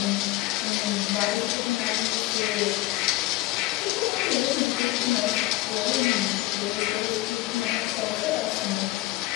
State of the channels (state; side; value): quieter; right; 18.7 dB